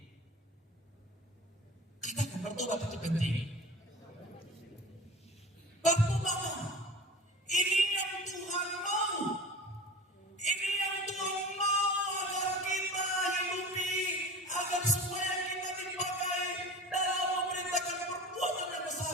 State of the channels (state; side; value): normal; both; correlation 0.37